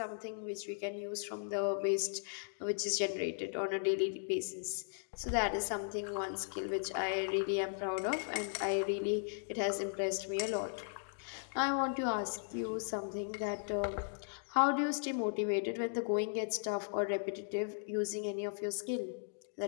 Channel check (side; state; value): right; silent; digital silence